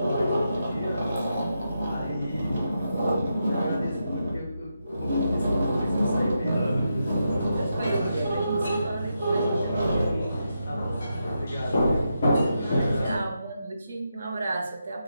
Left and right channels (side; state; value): both; inverted; correlation -0.85